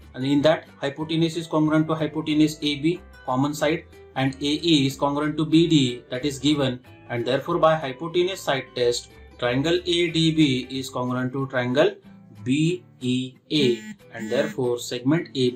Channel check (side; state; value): both; identical; correlation 1.00